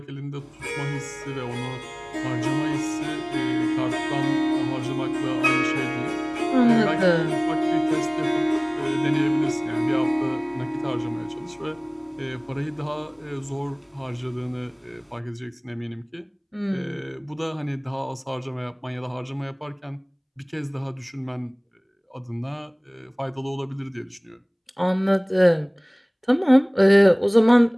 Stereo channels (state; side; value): identical; both; correlation 1.00